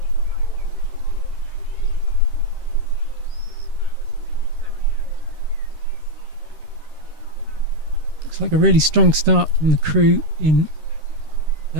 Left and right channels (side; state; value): left; late; 13 ms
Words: Looks like a really strong start from the crew in